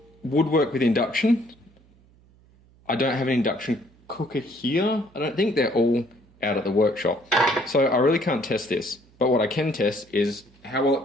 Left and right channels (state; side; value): noise; right; hum, 29 dB below the sound